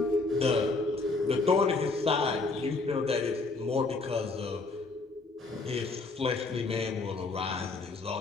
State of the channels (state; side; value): quieter; right; 3.6 dB